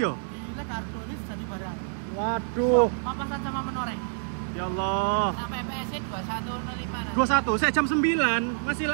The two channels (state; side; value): silent; left; digital silence